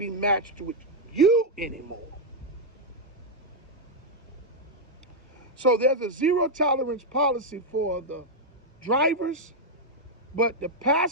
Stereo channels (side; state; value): both; normal; correlation -0.01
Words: matched with you anymore. So there's a zero tolerance policy for the drivers, but the